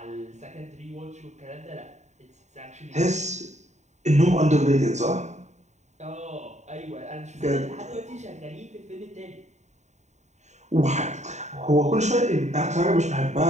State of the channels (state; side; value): late; left; 0.34 ms